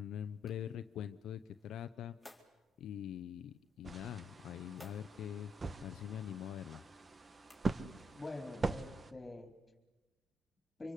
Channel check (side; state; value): both; normal; correlation 0.76